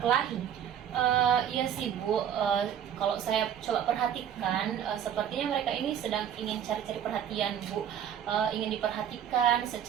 Iya sih Bu, kalau saya coba perhatikan, sepertinya mereka ini sedang ingin cari-cari perhatian Bu, ingin diperhatikan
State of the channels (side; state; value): left; quieter; 9.4 dB